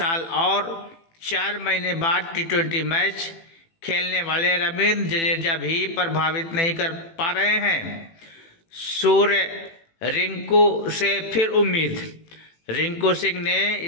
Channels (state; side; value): late; right; 18 ms